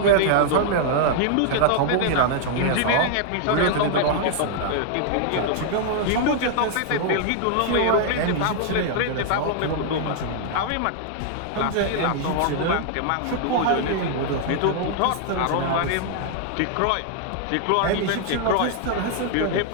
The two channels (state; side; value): different; both; correlation -0.01